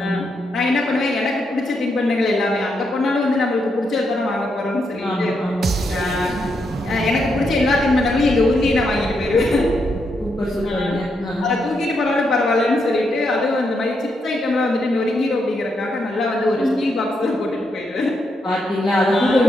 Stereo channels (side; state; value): both; normal; correlation 0.80